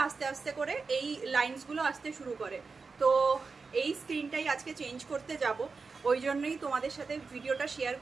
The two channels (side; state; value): left; quieter; 4.6 dB